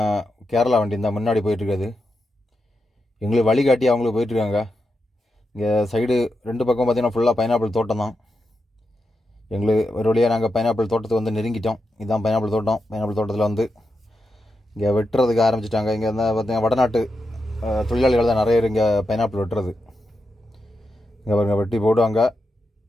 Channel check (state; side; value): normal; both; correlation 0.87